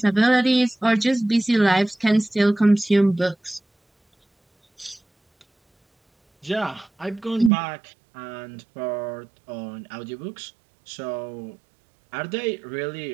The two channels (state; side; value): drops out; left; at 7.5 s